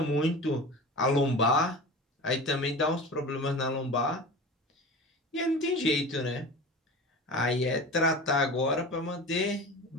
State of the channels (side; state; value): both; normal; correlation 0.33